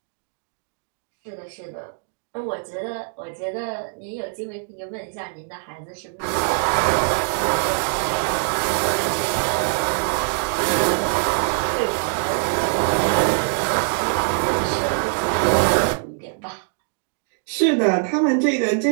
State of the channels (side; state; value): left; silent; 64 dB below the other